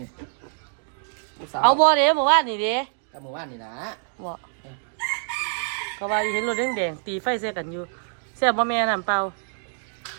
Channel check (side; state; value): left; silent; 56 dB below the other